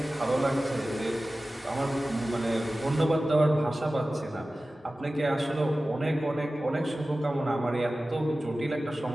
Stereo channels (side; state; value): both; normal; correlation 0.96